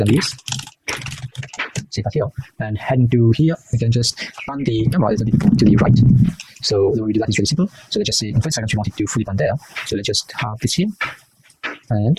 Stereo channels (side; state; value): both; identical; correlation 1.00